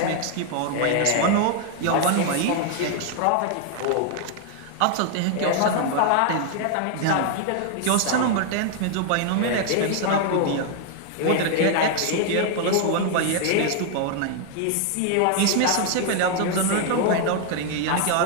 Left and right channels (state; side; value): different; both; correlation 0.00